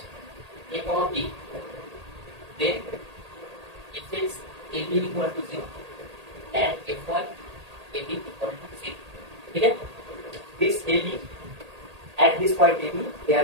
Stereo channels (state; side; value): late; left; 1.8 ms